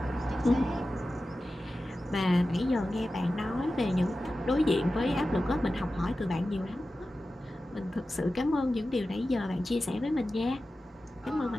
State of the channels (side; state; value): both; normal; correlation 0.94